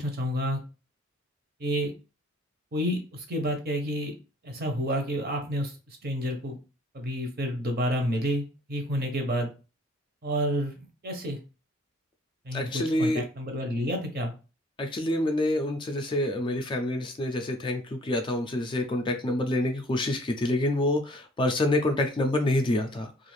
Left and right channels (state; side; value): normal; both; correlation 0.56